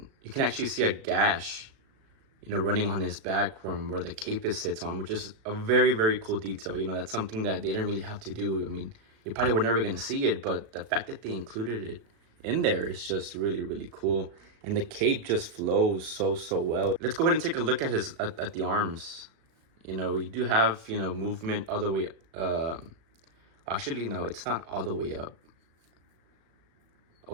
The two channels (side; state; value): left; late; 36 ms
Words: can actually see a gash running on his back from where the cape sits on, which is a very cool detail. That's something that they didn't really have to do. I mean, you probably were never going to see it, but the fact that they included it in there is just really cool. And the cape just flows so well. Let's go ahead and take a look at at the arms. We do have, movement all the way, actually, no, it's not all the way up.